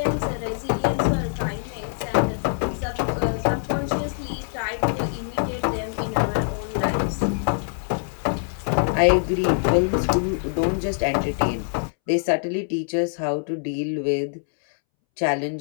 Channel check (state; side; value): silent; right; 63 dB below the other